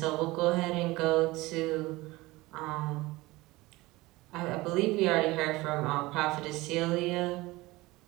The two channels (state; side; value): quieter; left; 20.5 dB